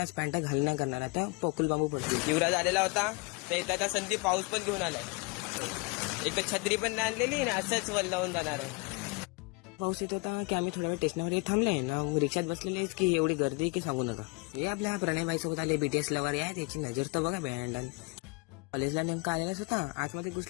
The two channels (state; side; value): quieter; right; 29.8 dB